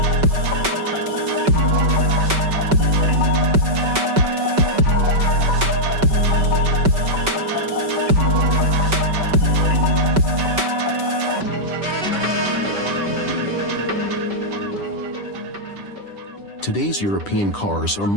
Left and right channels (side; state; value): left; late; 5.2 ms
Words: Today's European cars are